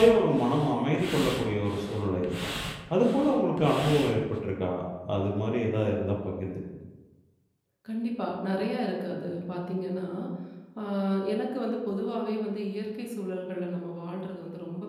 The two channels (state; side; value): identical; both; correlation 1.00